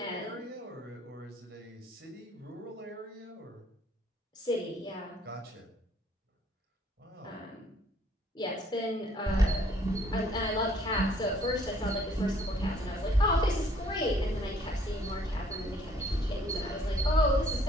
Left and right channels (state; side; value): normal; both; correlation 0.62